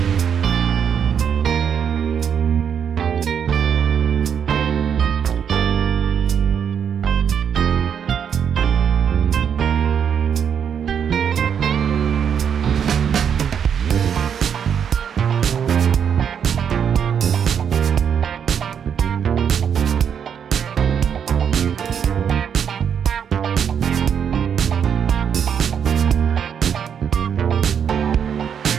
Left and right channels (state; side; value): quieter; left; 7.9 dB